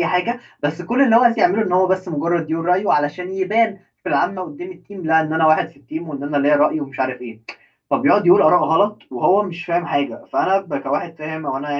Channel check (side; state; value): both; identical; correlation 1.00